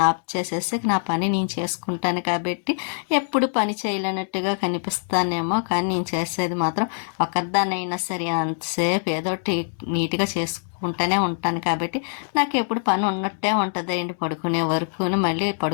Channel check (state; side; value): silent; right; digital silence